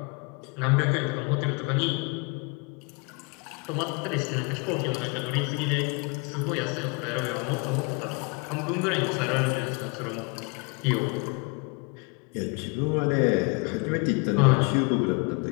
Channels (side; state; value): right; quieter; 31.7 dB